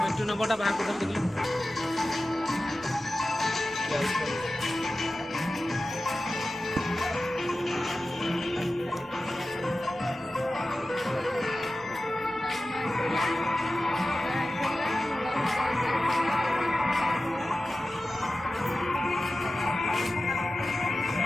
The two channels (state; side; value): normal; both; correlation 0.95